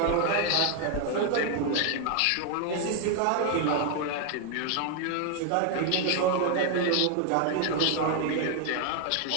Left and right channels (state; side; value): different; both; correlation 0.00